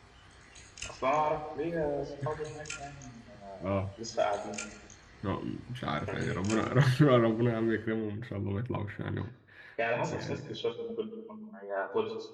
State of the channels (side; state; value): both; identical; correlation 1.00